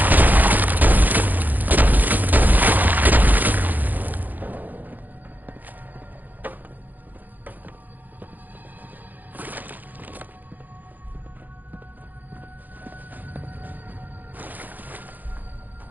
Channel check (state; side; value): late; left; 0.084 ms